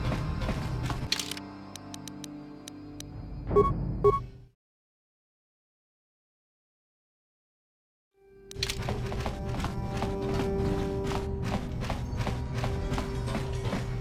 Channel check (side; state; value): both; identical; correlation 1.00